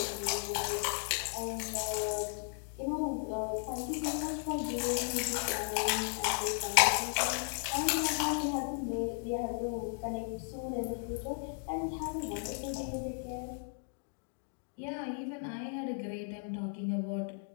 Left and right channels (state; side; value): silent; right; 54 dB below the other